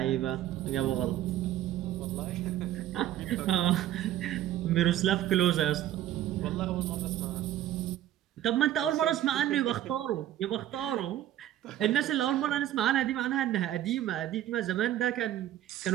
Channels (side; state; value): left; quieter; 12.7 dB